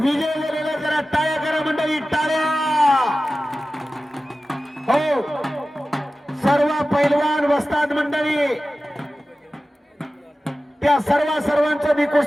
झालेला. जरा टाळ्या करा मंडळी, टाळ्या. हो, सर्व पैलवान वस्ताद मंडळी, त्या सर्वांचा मी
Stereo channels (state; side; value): normal; both; correlation 0.95